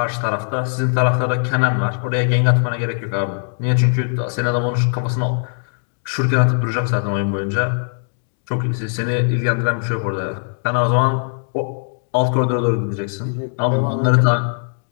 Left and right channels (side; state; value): right; silent; digital silence